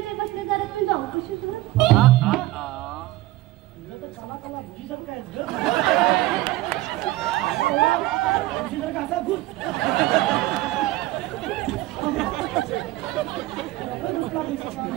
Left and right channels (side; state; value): left; quieter; 17.1 dB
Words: बसले जरा तुम्ही जाऊ कशी कसा घुस